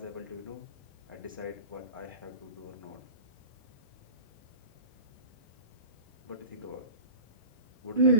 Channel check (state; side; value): inverted; both; correlation -0.36